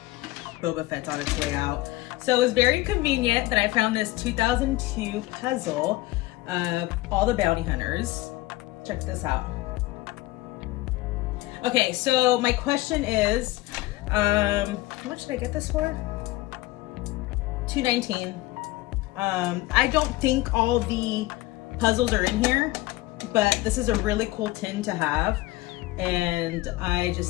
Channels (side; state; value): right; quieter; 18.7 dB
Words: Boba Fett's on its way out. So it was very convenient that I found this 2002 puzzle of all the bounty hunters. Check this out. Okay, so my question is, how much did I get this for? $2.19. I don't think all the puzzles are in here, but this is a really cool tin to have, and I